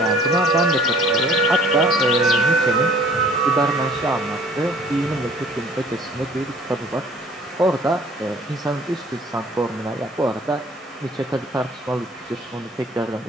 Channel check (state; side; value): normal; both; correlation 0.53